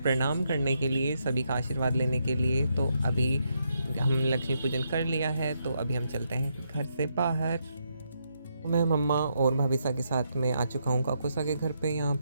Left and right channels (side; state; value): both; inverted; correlation -0.79